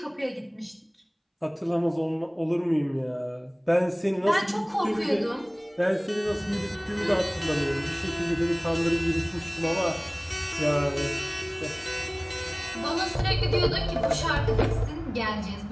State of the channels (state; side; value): identical; both; correlation 1.00